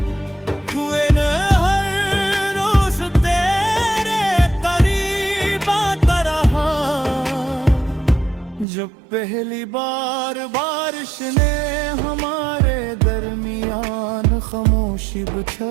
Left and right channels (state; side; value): drops out; left; at 8.7 s